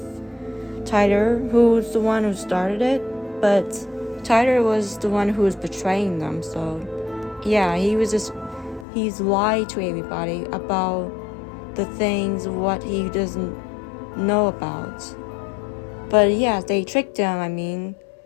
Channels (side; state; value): right; drops out; at 8.8 s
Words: Tyler, who was the one who started it, but Tyler was the one who was betraying them, so yeah, he's lied to everybody about the things what he doesn't know about. But yeah, they tricked him,